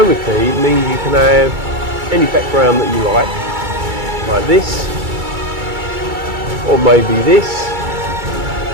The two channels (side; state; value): left; late; 2.3 ms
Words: it means you can have any background that you like this, or maybe this,